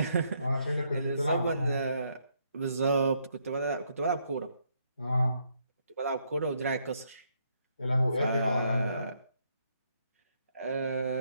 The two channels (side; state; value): both; inverted; correlation -0.74